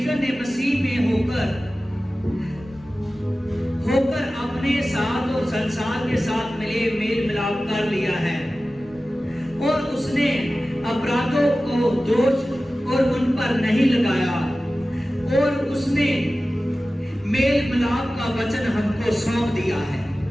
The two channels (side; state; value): both; normal; correlation 0.96